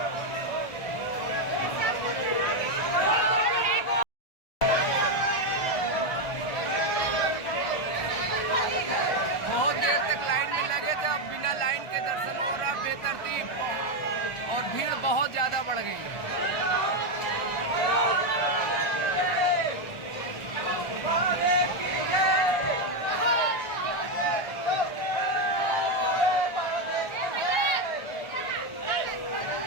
लाइन के दर्शन हो रहा बेतरतीब, और भीड़ बहुत ज़्यादा बढ़ गई है।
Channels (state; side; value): late; right; 1.5 ms